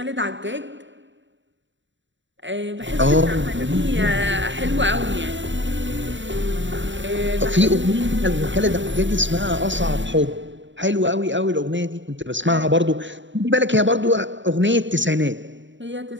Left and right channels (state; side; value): late; left; 0.54 ms